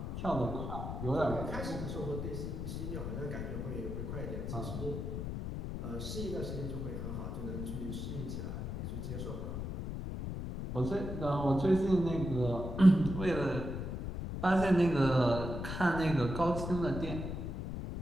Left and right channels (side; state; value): left; noise; rumble, 5 dB below the sound